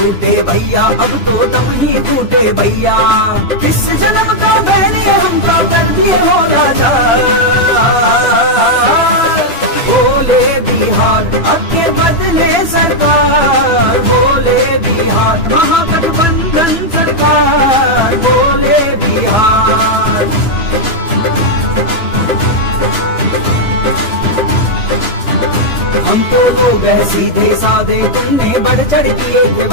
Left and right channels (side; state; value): right; late; 3.0 ms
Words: भैया, अब तो दम ही टूटे भैया। इस जन्म का मैंने हमको कर दिए हो राजा। बोले बिहार आगे बदले सरकार, बोले बिहार महागठबंधन सरकार, बोले बिहार। हम तो लोग है सीधे साधे, तुमने बढ़ चढ़ किए थे